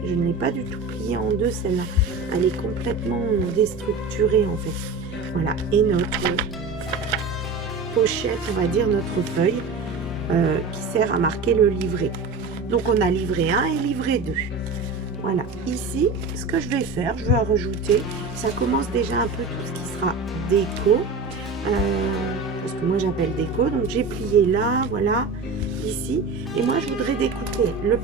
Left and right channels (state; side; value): quieter; left; 4.0 dB